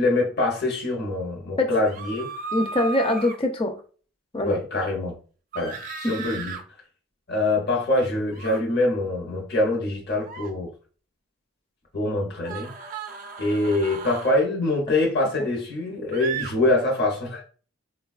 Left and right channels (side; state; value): both; normal; correlation 0.37